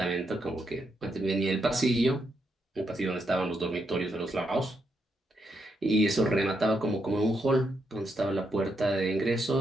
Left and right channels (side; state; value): both; normal; correlation 0.80